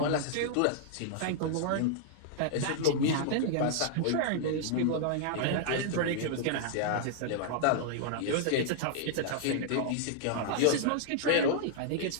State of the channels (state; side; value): different; both; correlation -0.01